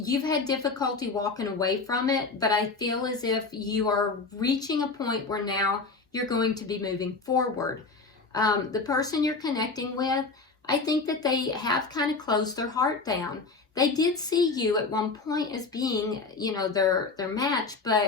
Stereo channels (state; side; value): quieter; right; 4.1 dB